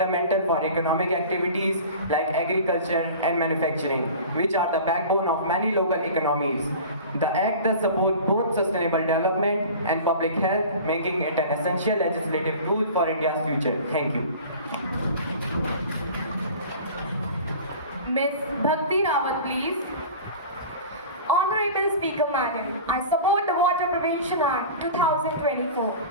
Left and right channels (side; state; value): both; inverted; correlation -0.38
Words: for economic activities like agriculture and manufacturing, which are the backbone of many local economies. The Act thus supports both sustainable development and public health, making it an essential legislative tool for India's future. Thank you. Ms. Bhakti Rawat, please. Honorable Speaker Madam, I support the Water Prevention Act 2024.